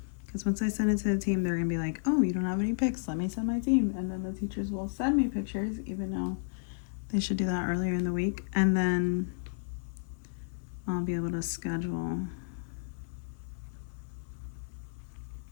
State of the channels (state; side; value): silent; right; digital silence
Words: Because once I send it to the team, they're going to be like, oh, you don't have any pics. Let me send my team. And then the teachers will send me pictures, even though they should do that earlier in the week. And then I'll be able to schedule